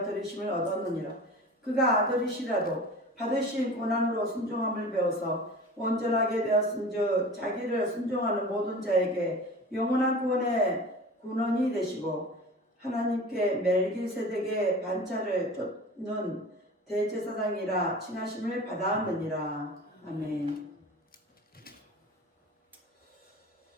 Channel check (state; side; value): normal; both; correlation 0.37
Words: 들으심을 얻었느니라. 그가 아들이시라도 받으신 고난으로 순종함을 배워서 온전하게 되었은즉 자기를 순종하는 모든 자에게 영원한 구원의 군원이 되시고 하나님께 멜기세덱의 반차를 쫓는 대제사장이라 칭하심을 받았느니라. 아멘.